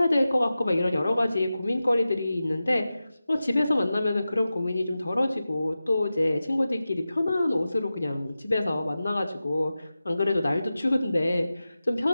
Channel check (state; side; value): inverted; both; correlation -0.94